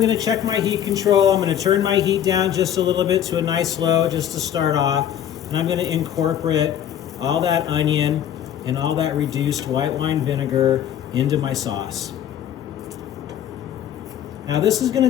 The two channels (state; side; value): quieter; right; 10.2 dB